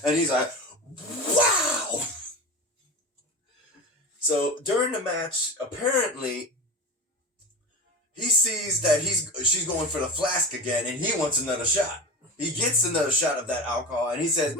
And he's like, wow! So during the match, apparently, he sees that she's going for the flask again, and he wants another shot. He gets another shot of that alcohol, and he says,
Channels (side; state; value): both; normal; correlation 0.28